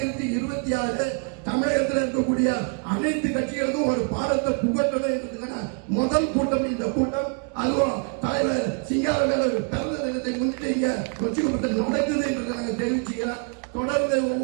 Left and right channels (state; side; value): quieter; left; 37.7 dB